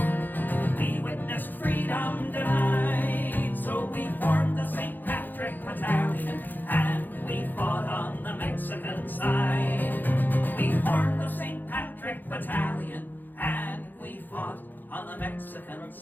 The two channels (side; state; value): right; late; 0.088 ms